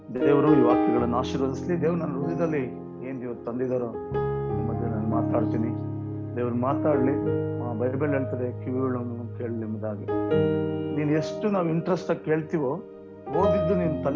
ದೇವರು ಈ ವಾಕ್ಯಗಳನ್ನು ಆಶೀರ್ವದಿಸಲಿ. ದೇವ್ರು ನನ್ನ ಹೃದಯದಲ್ಲಿ ಏನ್ ಇವತ್ತು ತಂದಿದ್ದಾರೋ ನಿಮ್ಮ ಮಧ್ಯೆ ನಾನು ಮಾತಾಡ್ತೀನಿ. ದೇವ್ರು ಮಾತಾಡ್ಲಿ. ಬೈಬಲ್ ಹೇಳ್ತದೆ, ಕಿವಿಗಳನ್ನು ಕೇಳಲಿ ಎಂಬುದಾಗಿ. ನೀನ್ ಎಷ್ಟು ನಾವು ಇಂಟ್ರೆಸ್ಟ್ ಆಗಿ ಕೇಳ್ತೀವೋ, ಓದಿದ್ದು ನಿನ್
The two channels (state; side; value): identical; both; correlation 1.00